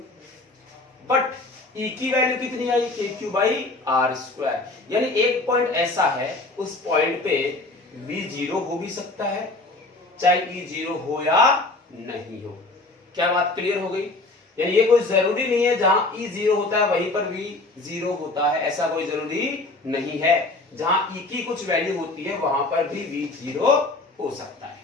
बट E की वैल्यू कितनी आई kq/r²। यानी एक पॉइंट ऐसा है उस पॉइंट पे V 0 हो भी सकता है चाहे E 0 हो या नहीं हो। क्या बात क्लियर हो गई? यानी ये कोई जरूरी नहीं है जहां E 0 होता है वहीं पर V 0 होता है, ऐसा कोई जरूरी नहीं है। जहां E की कुछ वैल्यू होती है वहां पर भी V 0 हो सकता है।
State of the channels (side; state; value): right; quieter; 3.1 dB